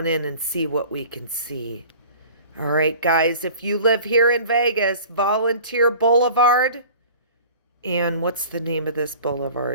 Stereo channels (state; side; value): inverted; both; correlation -0.44